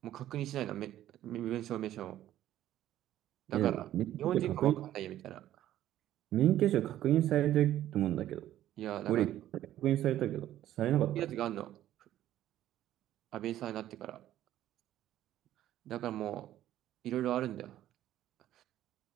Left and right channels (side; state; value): left; quieter; 12.9 dB